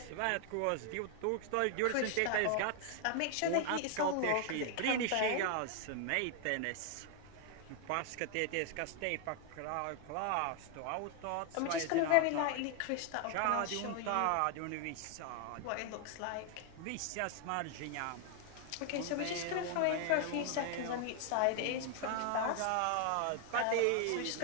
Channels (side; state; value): both; different; correlation 0.00